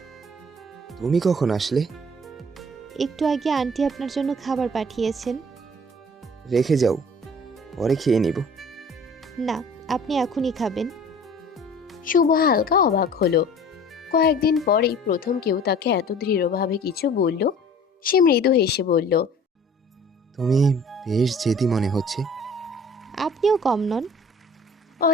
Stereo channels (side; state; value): both; normal; correlation 0.48